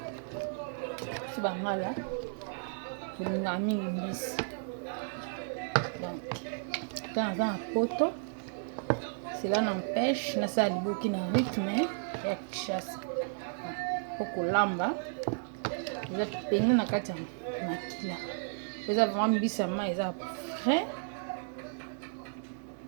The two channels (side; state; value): left; silent; 56 dB below the other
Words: C'est bangala. Pour nous amener l'imbisi. Donc, quand on a un poteau. Cela n'empêche na ça liboki na rythme ya chasse pour kolamba eza pene na kati ya makila eza vraiment mbisa ma eza frais